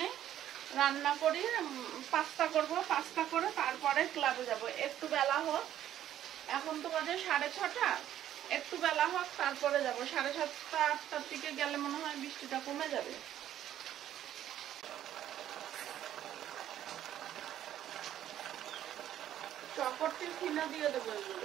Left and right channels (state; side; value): quieter; left; 11.6 dB